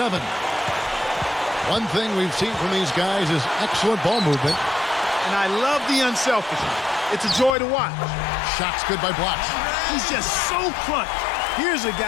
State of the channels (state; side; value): drops out; right; at 7.6 s